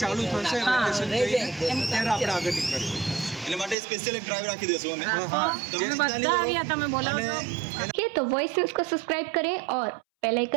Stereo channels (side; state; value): left; drops out; at 3.8 s